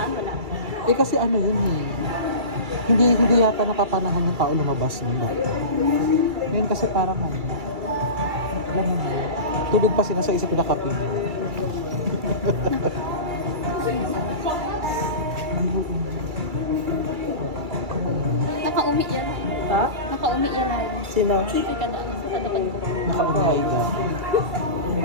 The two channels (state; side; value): late; left; 2.3 ms